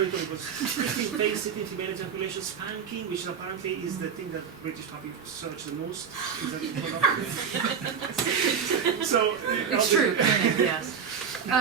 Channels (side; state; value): left; quieter; 6.8 dB